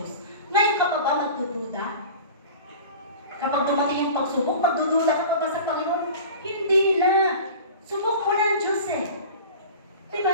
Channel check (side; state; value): both; inverted; correlation -0.38